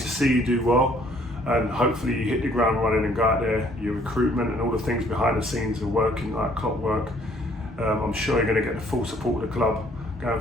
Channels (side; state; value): both; normal; correlation 0.61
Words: see you do well, and hopefully you hit the ground running and go out there. Your recruitment and all the things behind the scenes are working like clockwork. I'm sure you're going to get the full support of the club going